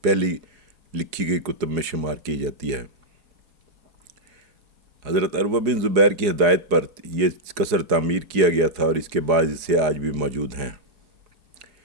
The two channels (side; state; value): left; late; 4.8 ms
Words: پہلی لکھی گئی کتب میں شمار کی جاتی ہے۔ حضرت عروہ بن زبیر کی ہدایت پر یہ قصر تعمیر کیا گیا تھا اور اس کے بعد اسے آج بھی موجود ہیں۔